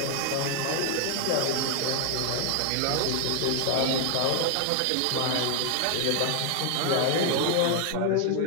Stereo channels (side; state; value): both; different; correlation 0.00